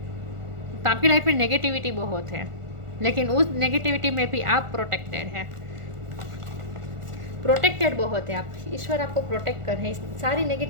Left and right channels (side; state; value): left; late; 1.4 ms